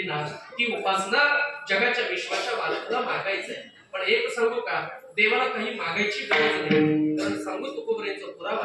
ना, ती उपासना जगाच्या विश्वाच्या मालकाला मागायचंय. पण एक सांगू का, देवाला काही मागायची गरज नाही. कारण सांगू तुकोबराचा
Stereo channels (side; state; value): both; identical; correlation 1.00